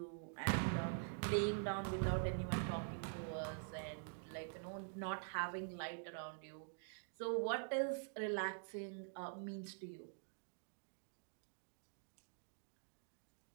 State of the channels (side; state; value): left; silent; digital silence